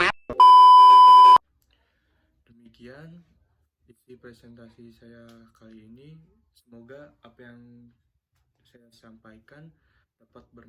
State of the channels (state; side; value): identical; both; correlation 1.00